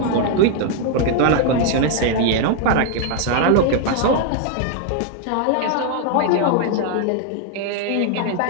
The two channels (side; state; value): both; different; correlation 0.00